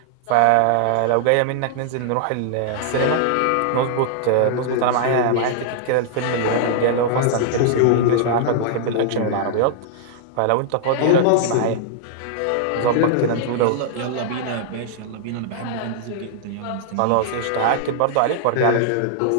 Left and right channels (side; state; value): both; different; correlation -0.01